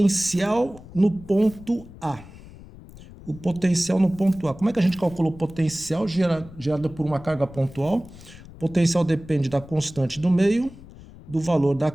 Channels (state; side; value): noise; left; rumble, 18 dB below the sound